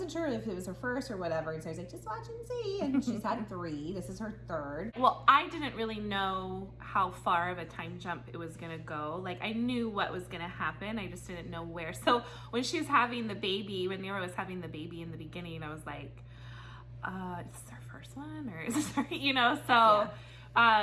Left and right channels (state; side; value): identical; both; correlation 1.00